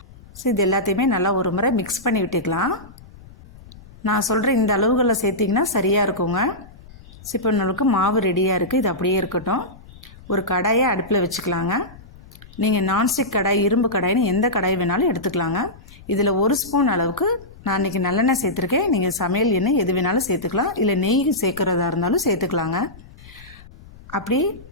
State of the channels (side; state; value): left; noise; rumble, 20 dB below the sound